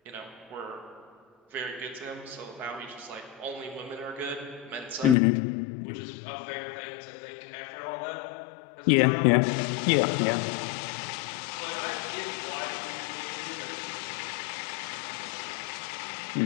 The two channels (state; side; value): drops out; right; at 5.2 s